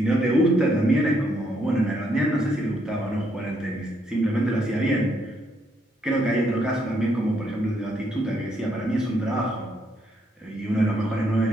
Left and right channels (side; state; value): both; normal; correlation 0.74